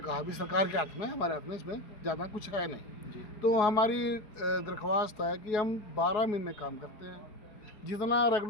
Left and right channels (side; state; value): right; late; 4.7 ms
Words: कहा भी सरकार के हाथ में, हमारे हाथ में इसमें ज़्यादा कुछ है नहीं जी। तो हमारी दरख्वास्त है कि हम 12 महीने काम करते हैं, जितना